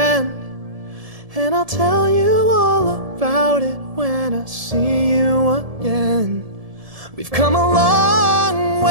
and I'll tell you all about it when I see you again. We've come a long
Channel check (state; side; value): late; left; 1.7 ms